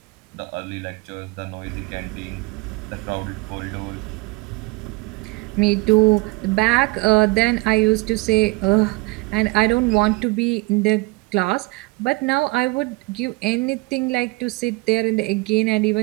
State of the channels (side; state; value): left; quieter; 25.4 dB